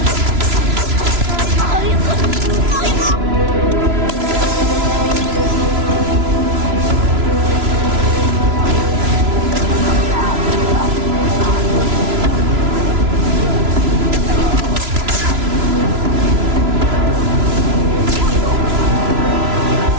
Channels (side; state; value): left; late; 3.0 ms